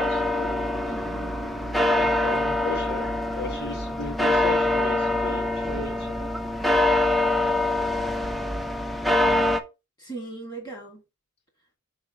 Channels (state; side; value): normal; both; correlation 0.80